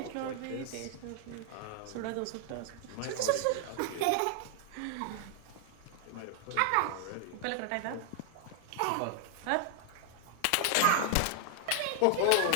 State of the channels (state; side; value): different; both; correlation 0.00